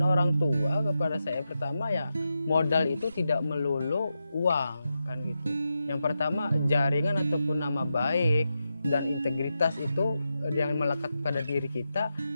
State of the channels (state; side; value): inverted; both; correlation -0.88